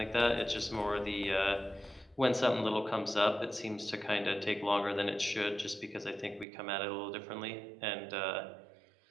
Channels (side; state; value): left; drops out; at 6.5 s